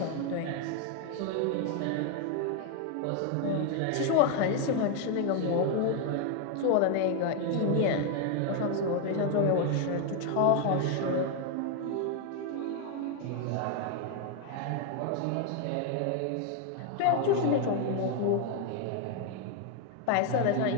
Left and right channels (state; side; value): different; both; correlation 0.01